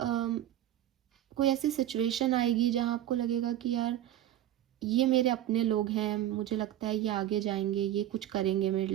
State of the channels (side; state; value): left; quieter; 12.7 dB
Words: कोई ऐसी सिचुएशन आएगी जहाँ आपको लगेगा कि यार ये मेरे अपने लोग हैं, मुझे लगता है ये आगे जाएंगे, ये कुछ करेंगे, मेरे